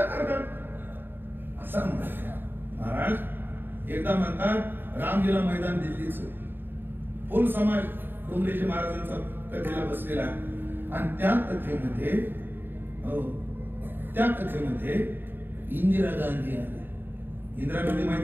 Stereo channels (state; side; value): late; left; 0.096 ms